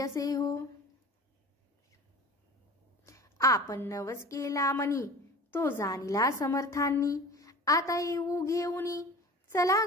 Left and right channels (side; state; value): both; normal; correlation 0.39